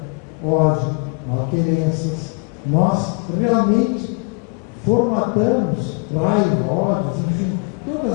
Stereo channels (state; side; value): quieter; right; 32.9 dB